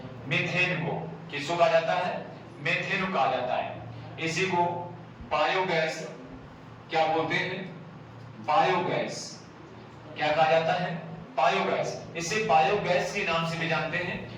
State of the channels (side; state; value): both; identical; correlation 1.00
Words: मीथेन को। किसको कहा जाता है? मीथेन को कहा जाता है। इसी को बायोगैस क्या बोलते हैं? बायोगैस। क्या कहा जाता है? बायोगैस। इसे बायोगैस के नाम से भी जानते हैं